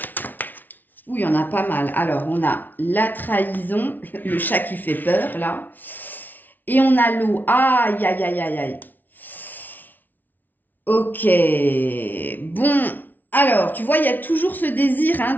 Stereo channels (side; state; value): right; late; 0.085 ms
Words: Oui, il y en a pas mal. Alors, on a la trahison, le chat qui fait peur, là. Et on a l'eau. Aïe, aïe, aïe, aïe, aïe. Ok. Bon, alors, tu vois, il y a toujours ce désir hein,